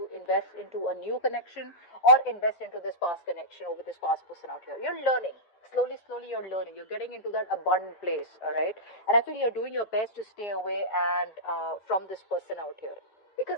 invest into a new connection or invest into this past connection over this past person out here. You're learning. Slowly, you're learning. You're getting into that abundant place, all right? And I feel you're doing your best to stay away and from this person out here.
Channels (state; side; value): late; right; 9.7 ms